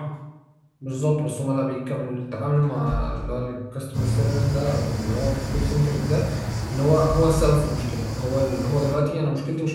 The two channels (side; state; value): both; identical; correlation 1.00